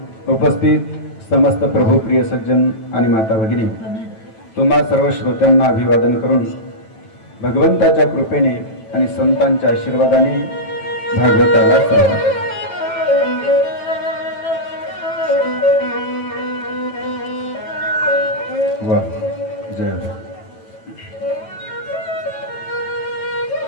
उपस्थित समस्त प्रभुप्रिय सज्जन आणि माता भगिनी, तुम्हा सर्व श्रोत्यांना अभिवादन करून भगवंताच्या कृपेने आणि संतांच्या आशीर्वादाने भागवताला सुरुवात। वा जय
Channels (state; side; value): late; right; 9.0 ms